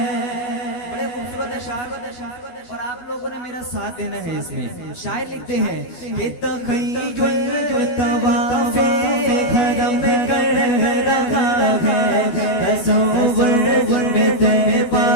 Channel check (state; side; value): late; right; 12 ms